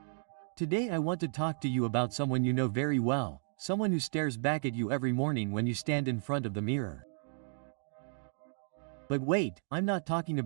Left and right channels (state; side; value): silent; left; digital silence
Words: Today I want to talk to you about someone you know very well, someone who stares back at you every morning when you stand in front of the mirror. But wait, I'm not talking